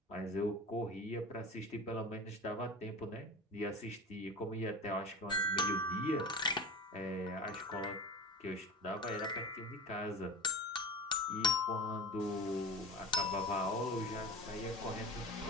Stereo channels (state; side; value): normal; both; correlation 0.32